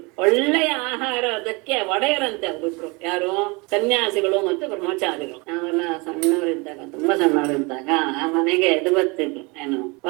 ಒಳ್ಳೆಯ ಆಹಾರ ಅದಕ್ಕೆ ಒಡೆಯರಂತೆ ಅವರಿಬ್ರು, ಯಾರು ಸನ್ಯಾಸಿಗಳು ಮತ್ತು ಬ್ರಹ್ಮಚಾರಿಗಳು. ನಾವೆಲ್ಲ ಸಣ್ಣವರಿದ್ದಾಗ, ತುಂಬಾ ಸಣ್ಣವರಿದ್ದಾಗ ಆ ಮನೆಗೆ ಇದು ಬರ್ತಿದ್ರು, ಏನು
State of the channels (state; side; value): quieter; left; 27.8 dB